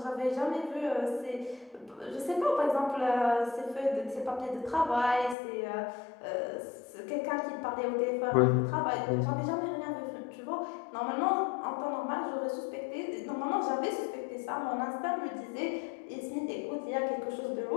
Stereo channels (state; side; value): drops out; right; at 5.4 s